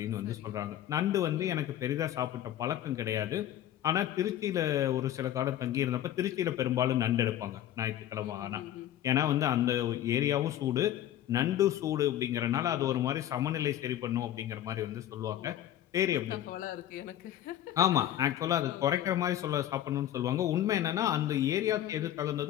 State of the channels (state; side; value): quieter; right; 12.0 dB